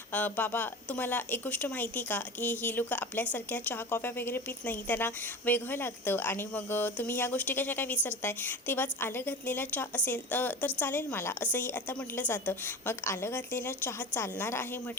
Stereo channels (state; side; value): normal; both; correlation 0.31